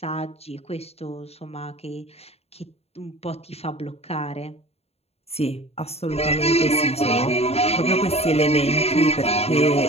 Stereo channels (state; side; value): late; right; 0.30 ms